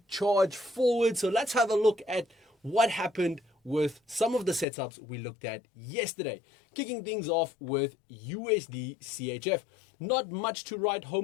charge forward. So let's have a look at what happened with some of the setups we looked at yesterday. Kicking things off with USD CHF. Not much to write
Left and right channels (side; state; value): right; drops out; at 4.7 s